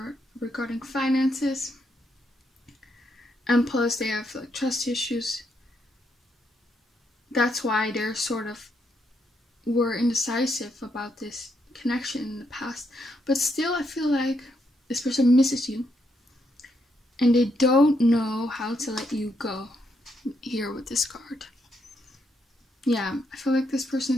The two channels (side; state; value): both; normal; correlation 0.77